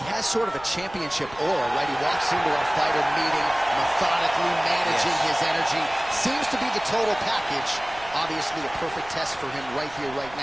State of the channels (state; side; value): noise; right; rumble, 21 dB below the sound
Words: has sort of a championship aura, right? He walks into a fighter meeting, methodically managing his energy. Seems to be the total package. Obviously, a perfect test for him right here, right